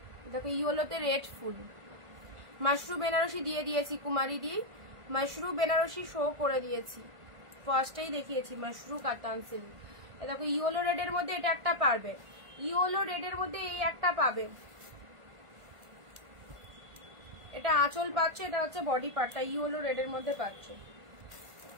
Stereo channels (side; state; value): left; late; 1.5 ms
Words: দেখো ইয়েলোতে রেড ফুল, মাশরু বেনারসি দিয়ে দিয়েছি, কুমারী দি মাশরু বেনারসি শো করে দিয়েছি, ফার্স্টেই দেখিয়েছি মাশরু কাতান সিল্ক। দেখো ইয়েলো রেডের মধ্যে এটা একটা পারবে, ইয়েলো রেডের মধ্যে এই একটা পাবে। এটা আঁচল পাচ্ছ, এটা হচ্ছে বডি পার্টটা ইয়েলো রেডের মধ্যে পাচ্ছ।